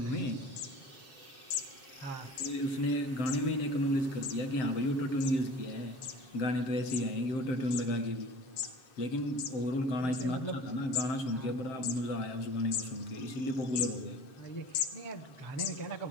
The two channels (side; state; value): right; late; 7.5 ms